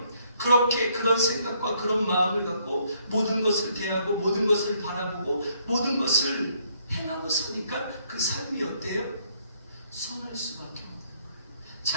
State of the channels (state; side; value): inverted; both; correlation -0.68